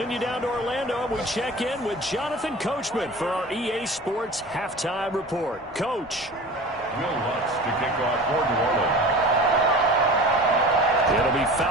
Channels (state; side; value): normal; both; correlation 0.38